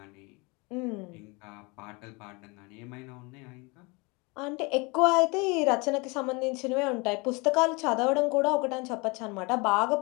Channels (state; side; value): quieter; right; 27.8 dB